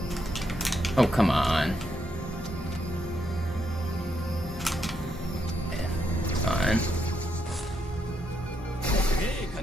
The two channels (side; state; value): both; normal; correlation 0.79